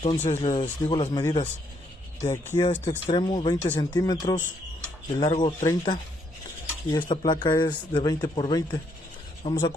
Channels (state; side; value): normal; both; correlation 0.72